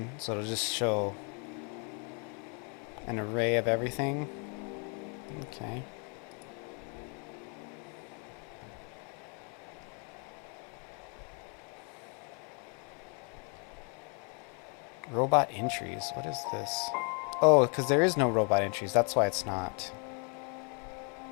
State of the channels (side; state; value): right; quieter; 37.4 dB